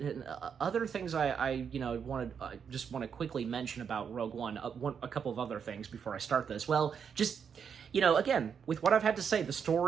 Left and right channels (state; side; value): quieter; left; 7.1 dB